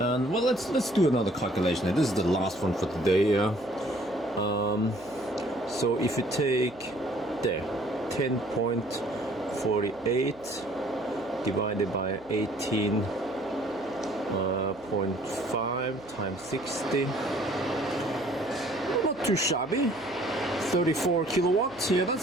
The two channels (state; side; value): noise; right; hum, 25 dB below the sound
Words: and well, let's do another calculation. This is the last one for today. So if you take there 10.48 divided by 18.5 times 60, not too shabby. 34 kilowatts. Yeah,